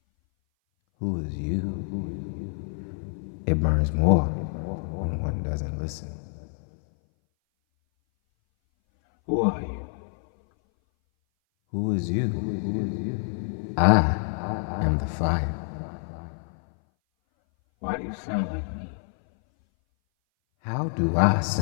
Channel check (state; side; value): silent; right; 58 dB below the other